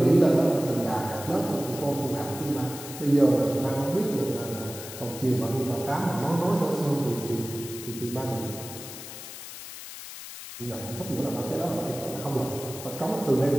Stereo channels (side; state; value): left; noise; hiss, 11 dB below the sound